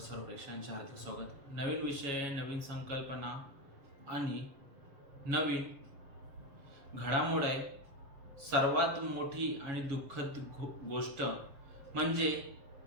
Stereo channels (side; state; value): left; late; 7.2 ms